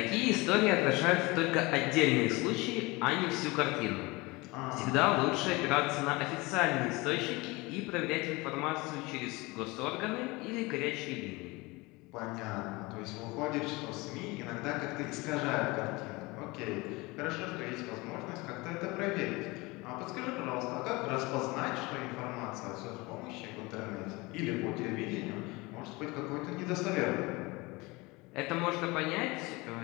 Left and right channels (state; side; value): quieter; right; 23.7 dB